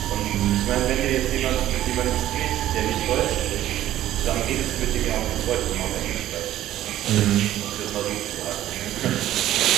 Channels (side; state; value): left; quieter; 13.2 dB